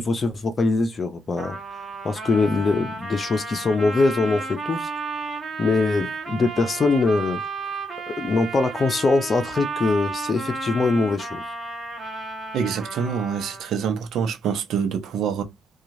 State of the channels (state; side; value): normal; both; correlation 0.80